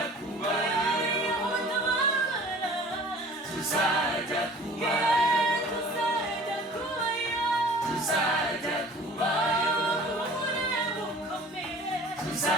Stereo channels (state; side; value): normal; both; correlation 0.47